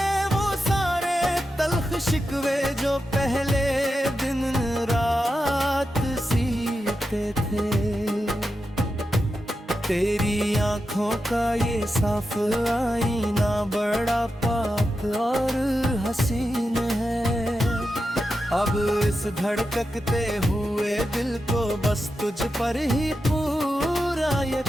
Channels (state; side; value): normal; both; correlation 0.89